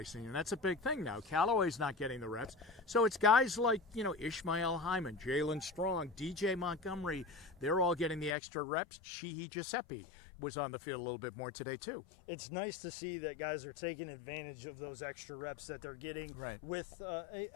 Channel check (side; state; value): right; drops out; at 8.3 s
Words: and that's a big thing now. Callaway's not getting the reps. So it's guys like, Ishmael Hyman, Jalen Strong, DJ Montgomery. They're all getting the extra reps. Sheehy Giuseppe was on the field a little bit more today, too. It's nice to see that guys are taking advantage of those extra reps that they're getting with